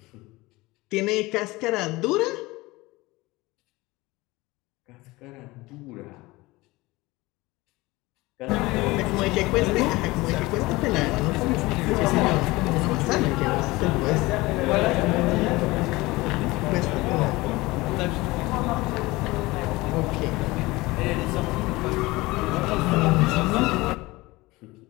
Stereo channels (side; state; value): right; quieter; 21.1 dB